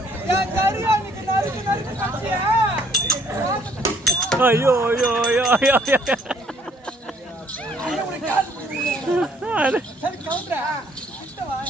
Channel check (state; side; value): normal; both; correlation 0.63